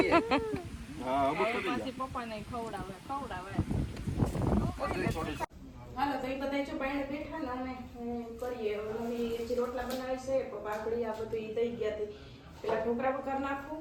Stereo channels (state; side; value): identical; both; correlation 1.00